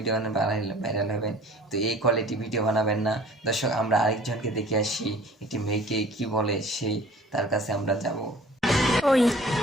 বানালে ভাইরাল হবেন। তো এই কোয়ালিটি ভিডিও বানাবেন না। দর্শক, আমরা আরেকজনকে দেখে আসি, একটি মেয়েকে কি বলে সেই, তার কাছে আমরা যাব। ওই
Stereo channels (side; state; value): both; normal; correlation 0.48